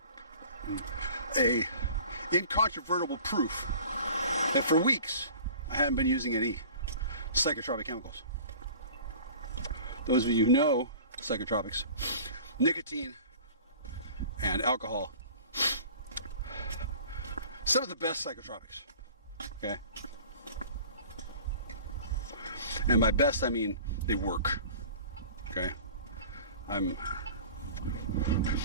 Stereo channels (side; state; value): both; inverted; correlation -0.43